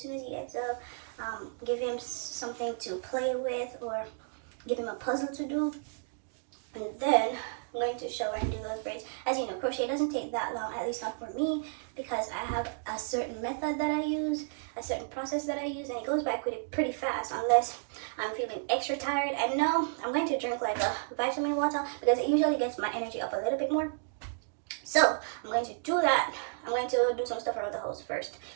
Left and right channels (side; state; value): left; silent; digital silence